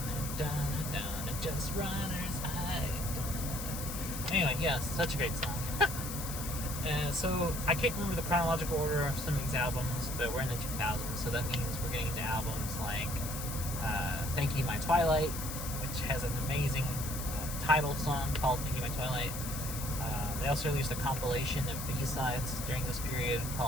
dun dun dun. Just runners high, dun dun dun. Anyway, yes, such a great song. So I can't remember the chronological order of some of these albums, but we're in the 2000s, so that means we're getting into albums like Thank You My Twilight, which has an amazing title song called Thank You My Twilight. They also released a compilation of B-sides during this period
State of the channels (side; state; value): left; noise; hiss, 7 dB below the sound